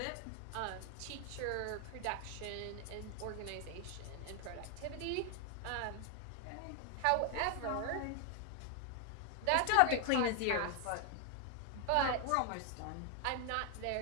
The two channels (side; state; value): both; different; correlation 0.00